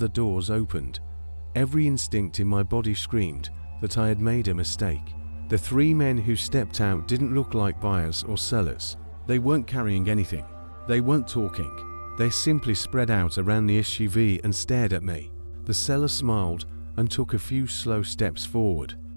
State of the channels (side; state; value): both; inverted; correlation -1.00